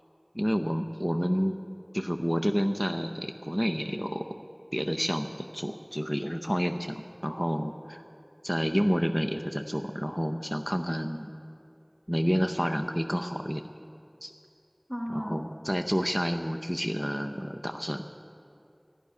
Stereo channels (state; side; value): identical; both; correlation 1.00